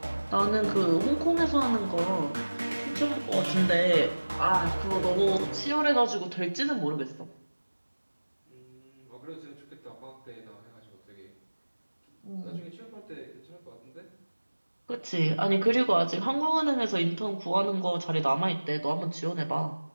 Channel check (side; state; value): both; inverted; correlation -1.00